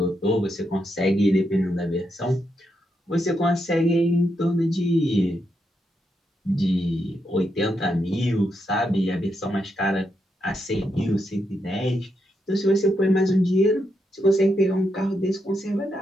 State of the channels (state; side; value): normal; both; correlation 0.82